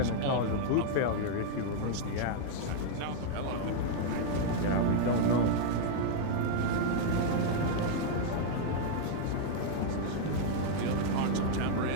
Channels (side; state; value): both; different; correlation -0.01